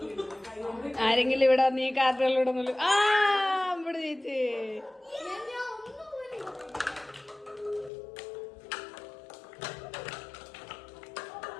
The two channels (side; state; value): right; drops out; at 7.9 s